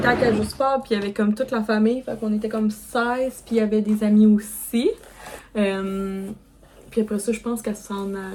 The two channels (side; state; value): both; identical; correlation 1.00